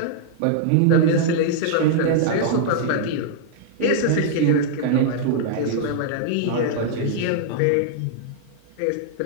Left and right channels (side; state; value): both; different; correlation -0.01